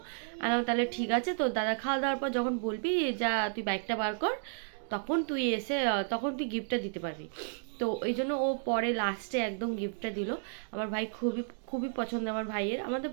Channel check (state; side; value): silent; left; digital silence